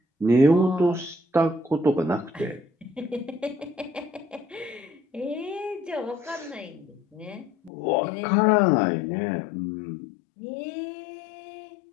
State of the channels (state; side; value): drops out; right; at 7.7 s